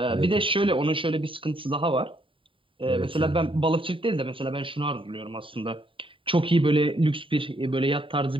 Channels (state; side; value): late; left; 0.25 ms